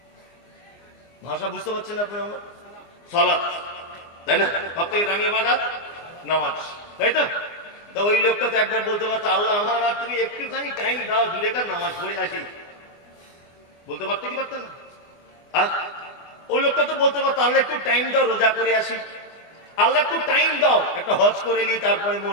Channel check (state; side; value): late; right; 24 ms